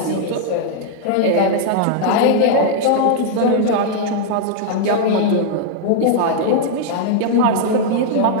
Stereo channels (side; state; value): both; different; correlation -0.01